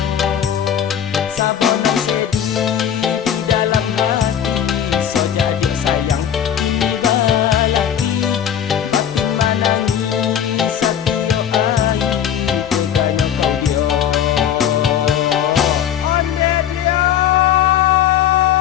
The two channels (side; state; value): right; quieter; 9.4 dB